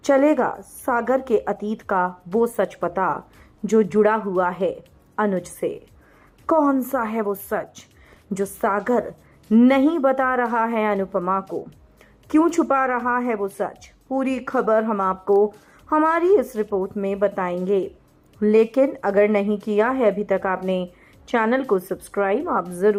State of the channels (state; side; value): identical; both; correlation 1.00